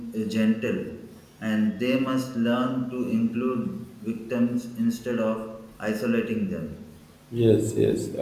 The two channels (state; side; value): identical; both; correlation 1.00